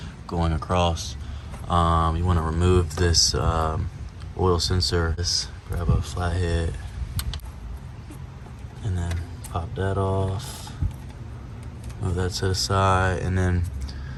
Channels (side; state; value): both; identical; correlation 1.00